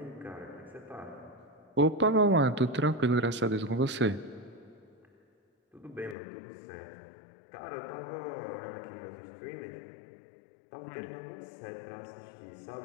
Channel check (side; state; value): right; drops out; at 6.2 s